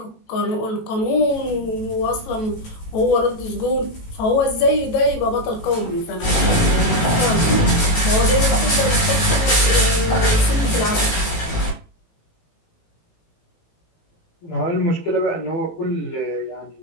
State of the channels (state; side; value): late; right; 18 ms